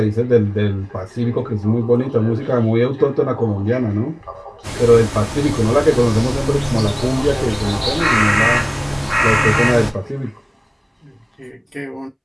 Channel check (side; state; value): both; identical; correlation 1.00